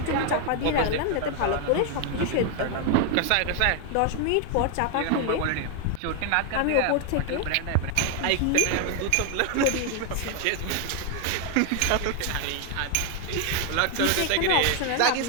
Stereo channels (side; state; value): both; different; correlation 0.01